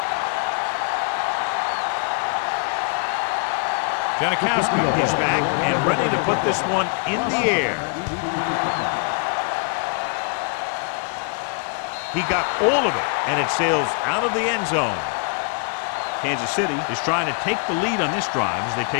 Janikowski is back and ready to put this one in the air. Deep to return. He got all of it, and it sails out of the end zone. Kansas City is trying to take the lead on this drive as they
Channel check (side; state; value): right; quieter; 38.6 dB